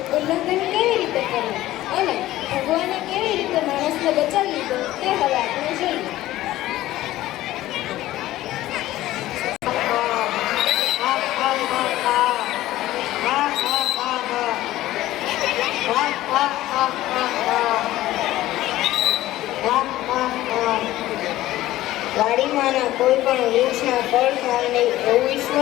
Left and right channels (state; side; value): quieter; right; 15.5 dB